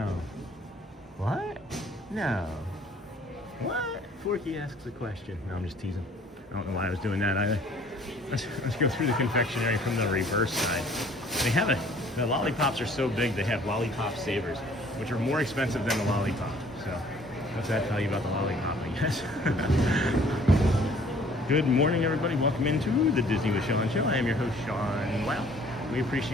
What? No. What? Forky asks a question. No, I'm just teasing. I don't know why I was doing that either. Let's go through the confectionery from the reverse side. They have the lollipops are so big, they have lollipop savers, which are more expensive than the lollipop. So what's that tell you about the lollipop, I guess? Good morning, everybody. Welcome into the Disney with Sean show. I am your host, Sean. Wow. We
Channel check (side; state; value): both; normal; correlation 0.56